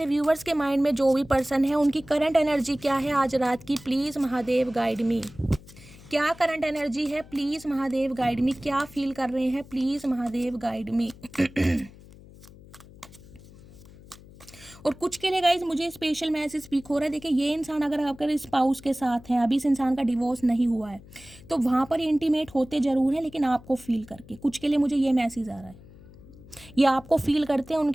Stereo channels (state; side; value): noise; left; hum, 21 dB below the sound